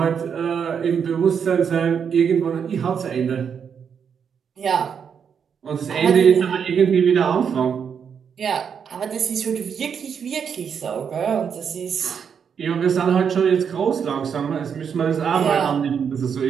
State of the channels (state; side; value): quieter; left; 7.1 dB